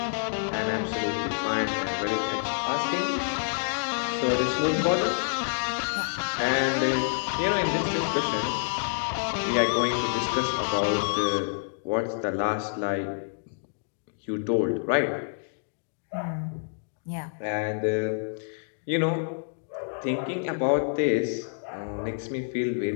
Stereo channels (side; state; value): right; silent; digital silence